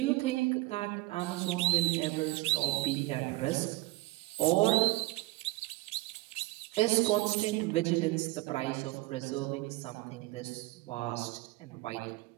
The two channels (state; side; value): quieter; left; 20.5 dB